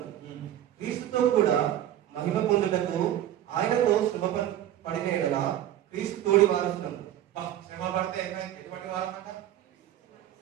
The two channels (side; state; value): left; quieter; 12.1 dB